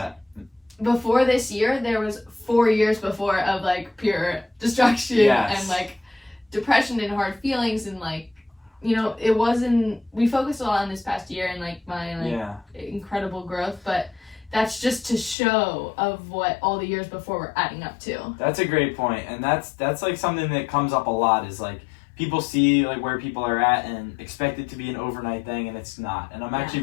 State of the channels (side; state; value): right; drops out; at 15.4 s